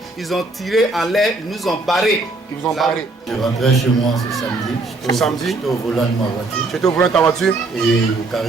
Ils ont tiré en l'air. Ils nous ont barrés. Ils vous ont barrés. Je rentrais chez moi ce samedi. J'étais au volant de ma voiture. Tu étais au volant de ta voiture? Et au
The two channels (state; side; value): quieter; left; 3.3 dB